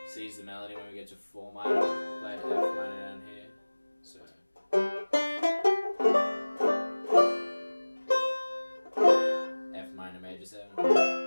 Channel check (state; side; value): inverted; both; correlation -1.00